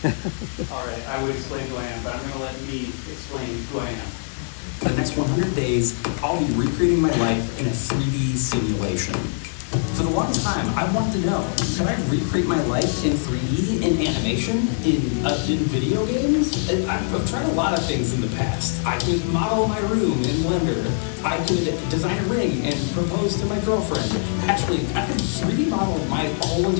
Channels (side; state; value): right; silent; digital silence